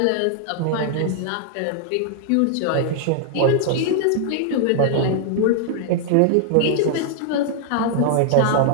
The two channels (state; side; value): different; both; correlation 0.00